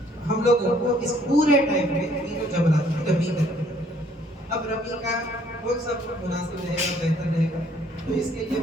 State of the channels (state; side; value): normal; both; correlation 0.62